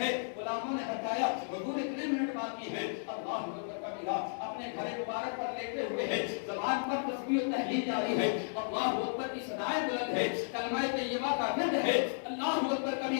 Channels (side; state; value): right; silent; digital silence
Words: ہے؟ غلاموں نے بتایا حضور اتنے منٹ باقی ہے۔ اللہ اکبر کبیرہ اپنے گھر مبارک پر لیٹے ہوئے ہیں، زبان پر تسبیح و تحلیل جاری ہے، اللہ اکبر کی صدائیں بلند ہے، کلمہ طیبہ کا ورد ہے، اللہ اکبر